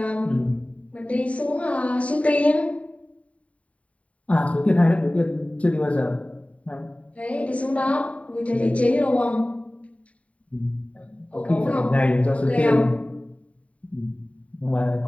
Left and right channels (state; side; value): late; right; 0.066 ms